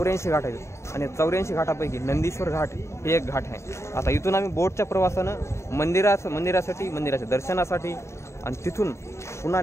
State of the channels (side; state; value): right; late; 0.13 ms